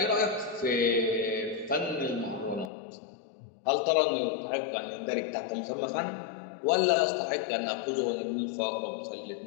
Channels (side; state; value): right; drops out; at 2.7 s